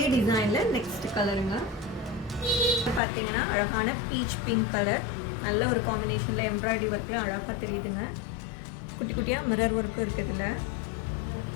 டிசைனில் நெக்ஸ்ட் கலருங்க. பார்த்தீங்கன்னா அழகான பீச் பிங்க் கலர், நல்ல ஒரு காம்பினேஷனில் எம்ப்ராய்டரி ஒர்க்கில் அழகாக தெரியுதுங்க. குட்டி குட்டியாக மிரர் ஒர்க்கு இருக்குதுல்ல.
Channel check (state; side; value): drops out; right; at 3.0 s